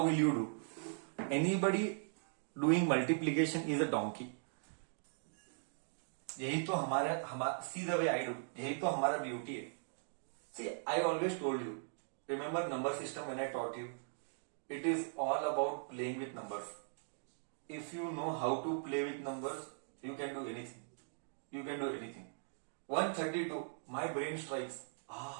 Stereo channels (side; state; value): left; silent; digital silence